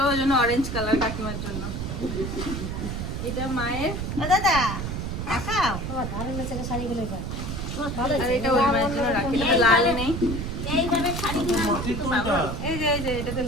ওই জন্য অরেঞ্জ কালার কাকিমার জন্য। এটা মায়ের, বাবা ধারে মেচে শাড়িগুলো এবার। আর এটা ওই মায়ের জন্য রাখি, এটা লাল নেই। এইভাবে শাড়ি এই যে এটাতে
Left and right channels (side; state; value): right; noise; rumble, 4 dB below the sound